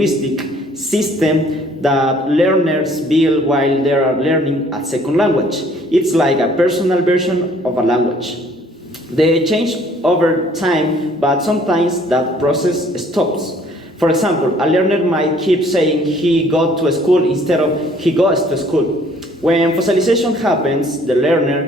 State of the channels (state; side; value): normal; both; correlation 0.58